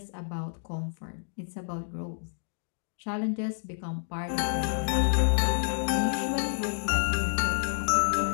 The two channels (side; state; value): right; silent; digital silence